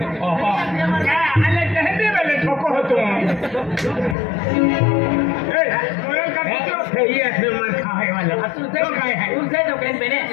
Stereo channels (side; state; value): right; drops out; at 4.2 s